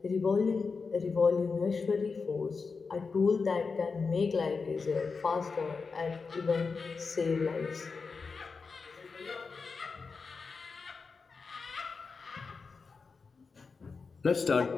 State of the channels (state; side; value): quieter; right; 4.8 dB